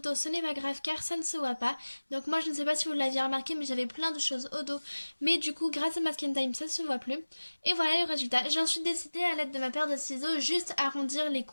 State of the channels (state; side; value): inverted; both; correlation -1.00